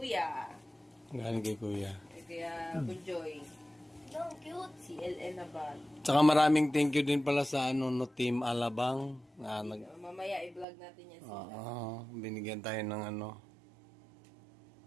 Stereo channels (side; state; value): left; drops out; at 10.7 s